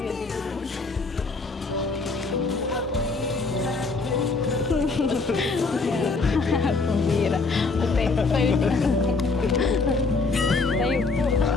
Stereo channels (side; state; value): right; quieter; 4.0 dB